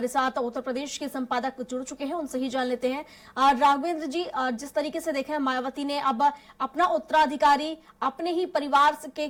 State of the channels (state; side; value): identical; both; correlation 1.00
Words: साथ उत्तर प्रदेश के संपादक जुड़ चुके हैं, उनसे ही जान लेते हैं। राघवेंद्र जी, जिस तरीके से देखें मायावती ने अब अपना उत्तराधिकारी अपने ही परिवार